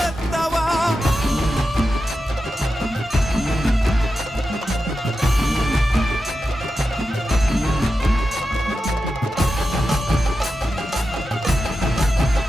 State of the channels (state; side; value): normal; both; correlation 0.91